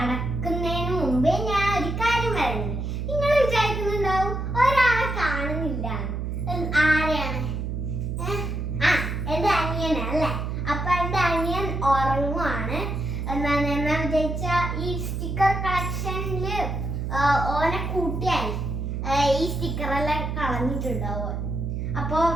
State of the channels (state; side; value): noise; right; hum, 3 dB below the sound